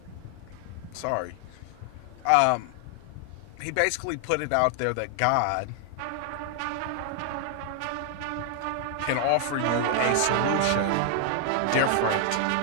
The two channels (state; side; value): different; both; correlation 0.00